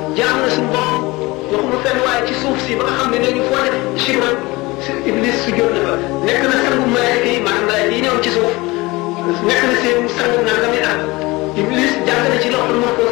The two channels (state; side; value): quieter; right; 22.2 dB